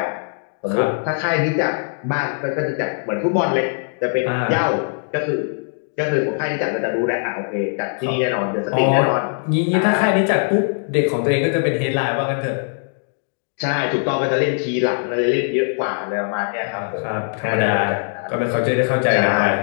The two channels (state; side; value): silent; right; 65 dB below the other